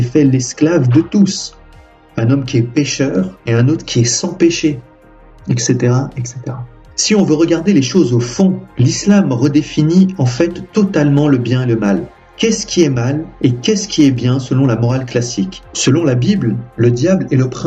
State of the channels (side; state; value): both; identical; correlation 1.00